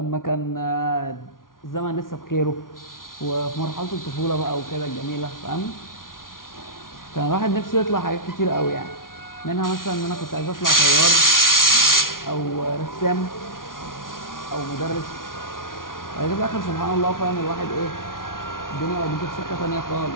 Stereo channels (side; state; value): right; late; 0.90 ms